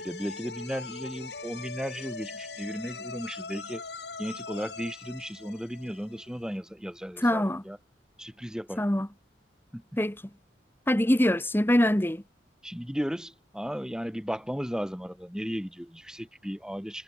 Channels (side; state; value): both; normal; correlation 0.88